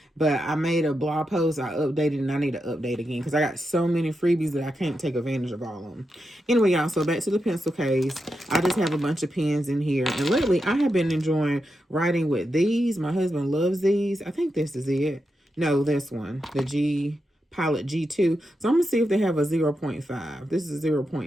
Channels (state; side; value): normal; both; correlation 0.87